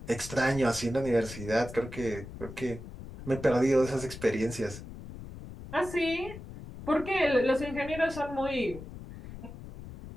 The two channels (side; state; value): left; noise; rumble, 13 dB below the sound